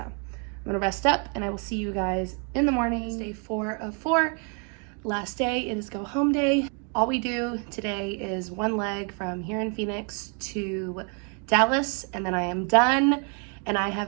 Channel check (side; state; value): left; quieter; 38.6 dB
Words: gonna rest up, and I will see you guys in the morning. It's day 4 of 4. Last day, it is go home day. All we do today is 1 leg from here in Phoenix to Dallas, and then I am done. And I have